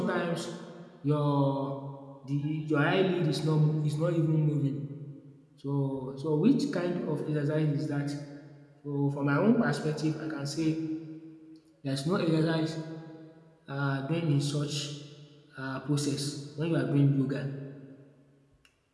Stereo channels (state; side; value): identical; both; correlation 1.00